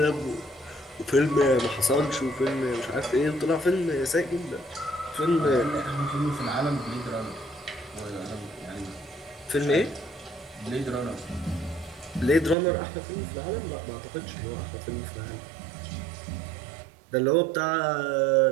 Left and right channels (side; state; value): left; drops out; at 12.6 s